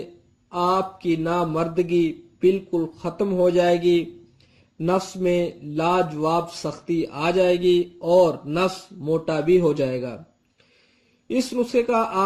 آپ کی نامردگی بالکل ختم ہو جائے گی، نفس میں لاجواب سختی آ جائے گی اور نفس موٹا بھی ہو جائے گا۔ اس نسخے کا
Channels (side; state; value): both; identical; correlation 1.00